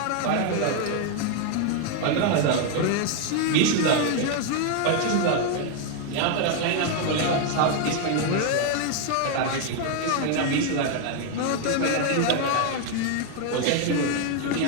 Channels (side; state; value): both; different; correlation 0.01